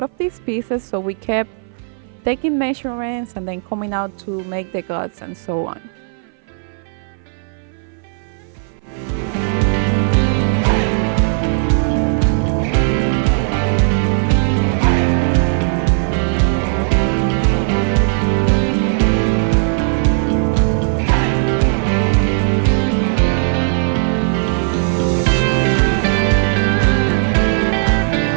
of these pieces, so we kept taking measurements and then coming out to make the guts and so on.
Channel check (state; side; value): silent; left; 59 dB below the other